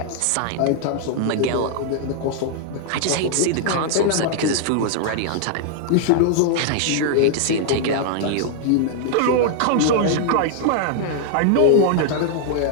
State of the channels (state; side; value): different; both; correlation 0.00